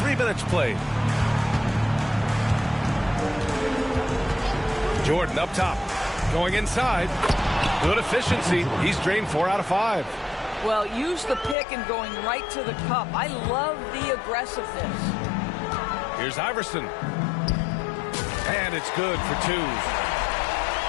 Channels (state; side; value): drops out; right; at 11.6 s